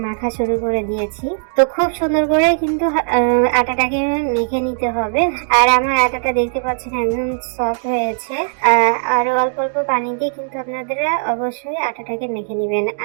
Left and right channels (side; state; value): left; silent; digital silence